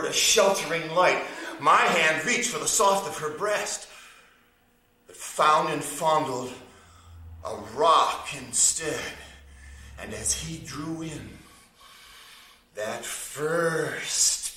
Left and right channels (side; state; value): both; identical; correlation 1.00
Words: a sheltering light. My hand reached for the soft of her breast, but found and fondled a rock instead. And as he drew in that